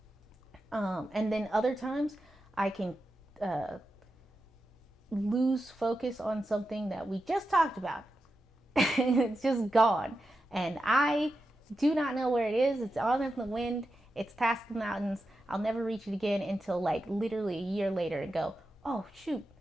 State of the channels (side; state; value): both; normal; correlation 0.90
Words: And then other times I can lose focus on something that we just talked about. It's just gone. And I do not know where it is. It's on in the wind. It's past the mountains. I'll never reach it again until like literally a year later and go, oh shoot,